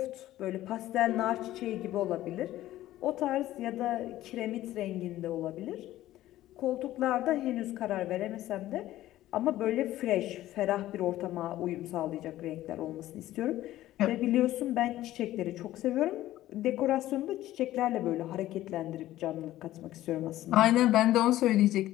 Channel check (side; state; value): right; quieter; 14.6 dB